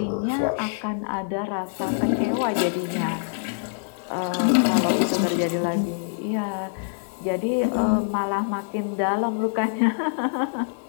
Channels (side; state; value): right; silent; digital silence